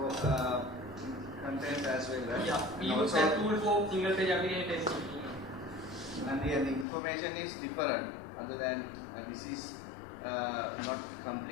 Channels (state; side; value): drops out; right; at 6.9 s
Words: content as well, right? Yeah, we And use also- that tool for single page application testing. and the information is different. Other than this is not